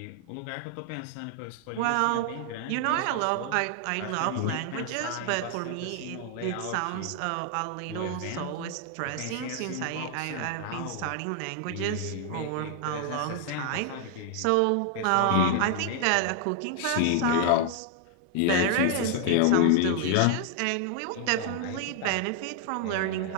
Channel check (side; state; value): both; different; correlation 0.00